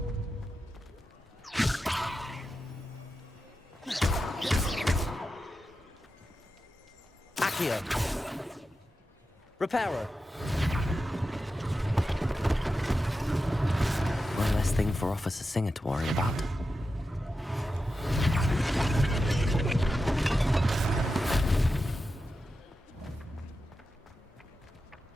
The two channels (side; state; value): both; normal; correlation 0.91